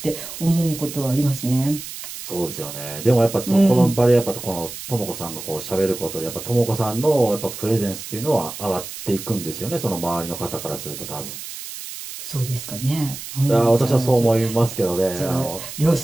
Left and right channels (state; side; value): noise; right; hiss, 10 dB below the sound